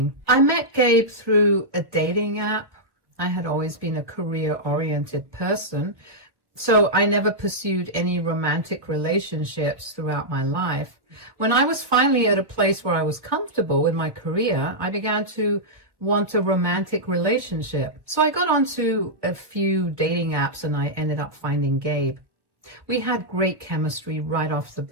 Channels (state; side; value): late; left; 1.0 ms